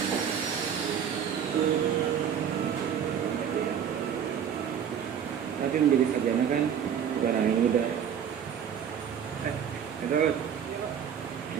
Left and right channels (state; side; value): quieter; left; 8.3 dB